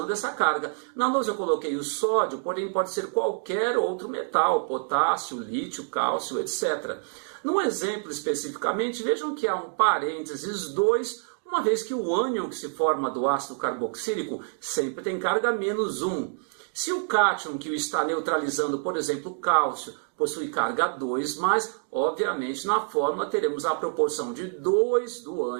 essa carga. Na lousa eu coloquei o sódio, porém pode ser qualquer outro metal, potássio, lítio, cálcio, etc. No exemplo especificamente, vejam que há um parênteses 2, uma vez que o ânion que se forma do ácido carboxílico sempre tem carga -1. Se o cátion que o está neutralizando, por exemplo, cálcio, possui carga 2+, obviamente na fórmula teremos a proporção de 2 do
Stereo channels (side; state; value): left; silent; 60 dB below the other